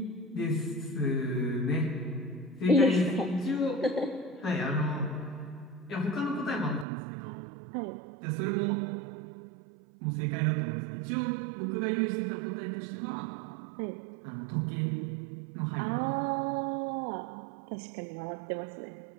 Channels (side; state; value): left; drops out; at 6.9 s